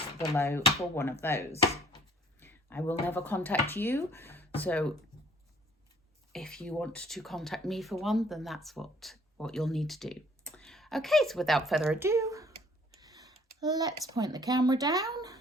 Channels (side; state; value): both; normal; correlation 0.58